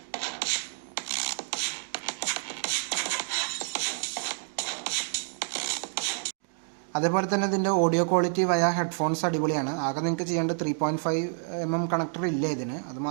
അതേപോലെ തന്നെ ഇതിൻ്റെ ഓഡിയോ ക്വാളിറ്റി വയ ഹെഡ്ഫോൺസ് അടിപൊളിയാണ്. ആകെ നിങ്ങൾക്ക് ചെയ്യേണ്ട 3.5mm കണക്ടർ ഇല്ല ഇതിന്, അത്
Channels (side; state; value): left; silent; digital silence